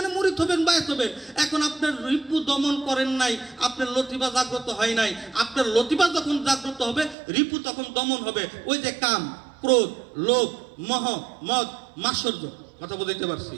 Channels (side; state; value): left; drops out; at 7.2 s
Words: মুরিদ হবেন, বায়াত হবেন। এখন আপনার রিপু দমন করেন নাই, আপনার লতিফা জাগ্রত হয় নাই। আপনার লতিফা যখন জাগ্রত হবে রিপু তখন দমন হবে। ওই যে কাম, ক্রোধ, লোভ, মোহ, মদ, মাৎসর্য। কথা বলতে পারছি?